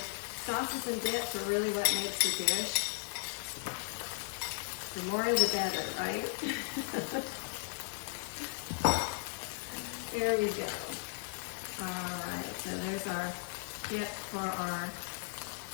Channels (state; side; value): silent; right; digital silence